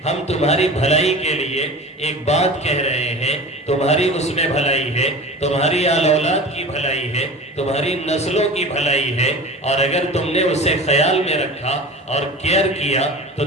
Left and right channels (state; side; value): normal; both; correlation 0.35